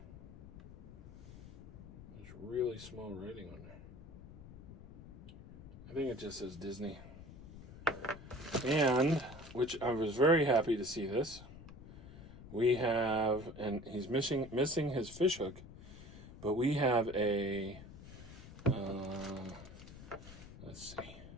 There's really small writing on there. I think it just says Disney. And, which I was very happy to see this. We have, and he's missing his fish hook, but we have a, let's see,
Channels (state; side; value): noise; left; rumble, 16 dB below the sound